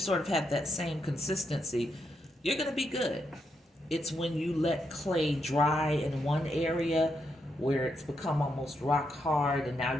of have that same consistency, you're going to be good. It's when you let clay dry in one area where it's become almost rock hard and now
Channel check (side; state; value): both; normal; correlation 0.81